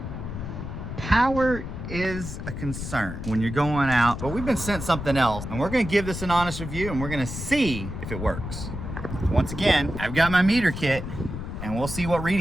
Power is a concern when you're going out, but we've been sent something else, and we're gonna give this an honest review, and we're gonna see if it works. Once again, I've got my meter kit, and we'll see what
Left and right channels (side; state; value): left; noise; rumble, 7 dB below the sound